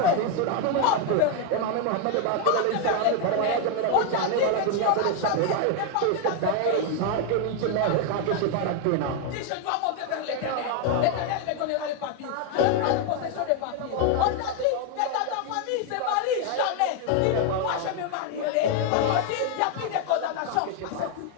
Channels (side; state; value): both; different; correlation 0.01